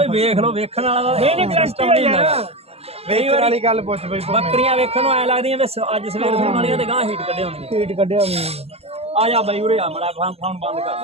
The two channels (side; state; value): left; late; 0.29 ms